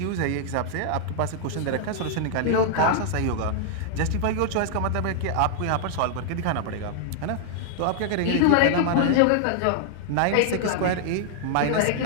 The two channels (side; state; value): both; different; correlation -0.01